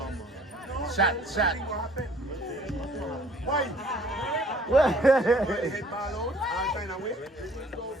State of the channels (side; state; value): both; normal; correlation 0.56